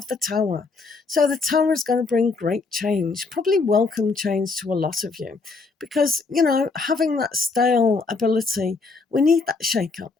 the Tower. So the Tower is going to bring great change, probably welcome change to a lot of you, because, you know, having that stale ability, we need that shake-up,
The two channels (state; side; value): quieter; right; 4.2 dB